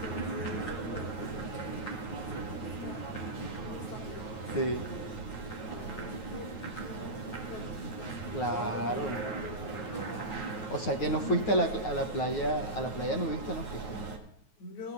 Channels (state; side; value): late; right; 9.3 ms